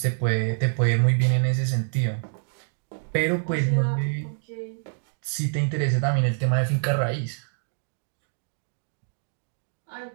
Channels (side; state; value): left; silent; 61 dB below the other